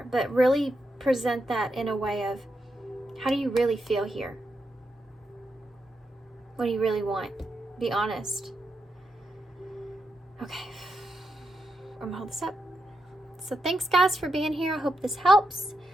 but really present that in a way of, how do you really feel here? What do you really want? Be honest. Okay, I'm gonna hold this up. So thanks, guys, for being here. I hope this helps.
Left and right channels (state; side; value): normal; both; correlation 0.84